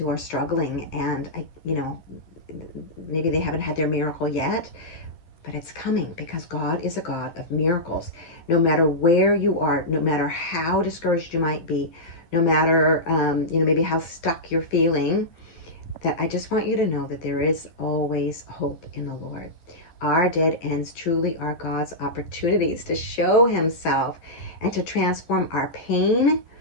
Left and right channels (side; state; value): right; late; 11 ms